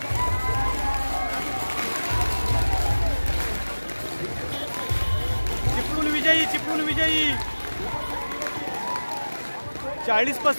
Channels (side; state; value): both; inverted; correlation -1.00